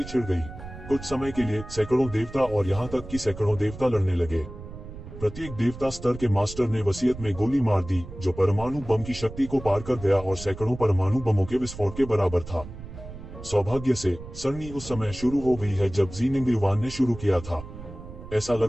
छिड़ गई। कुछ समय के लिए सैकड़ों देवता और यहाँ तक कि सैकड़ों देवता लड़ने लगे। प्रत्येक देवता स्तर के मास्टर ने वसीयत में गोली मार दी, जो परमाणु बम की शक्ति को पार कर गया और सैकड़ों परमाणु बमों के विस्फोट के बराबर था। सौभाग्य से सरनी उस समय शुरू हो गई है जब जिनिंग युवान ने शुरू किया था। ऐसा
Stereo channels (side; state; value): right; noise; rumble, 13 dB below the sound